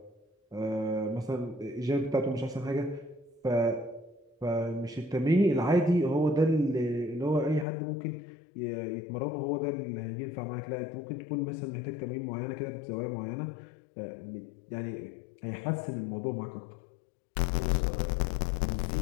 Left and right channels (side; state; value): right; drops out; at 7.7 s